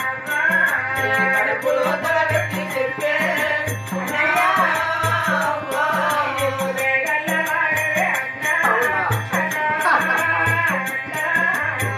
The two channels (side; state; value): both; identical; correlation 1.00